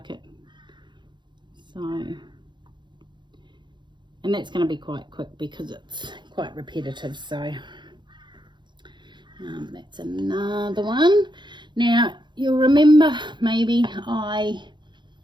it. So, and that's going to be quite quick because it's quite repetitive. So that's another one. Now you'll remember, maybe I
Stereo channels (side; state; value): left; late; 0.22 ms